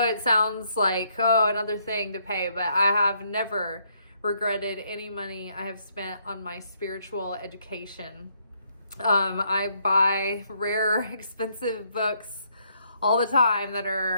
it sounds like, oh, another thing to pay, but I have never regretted any money I have spent on my spiritual education. I buy rare, expensive books all the time that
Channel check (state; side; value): inverted; both; correlation -0.72